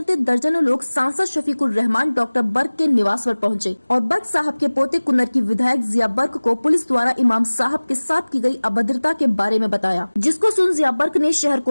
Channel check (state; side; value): inverted; both; correlation -1.00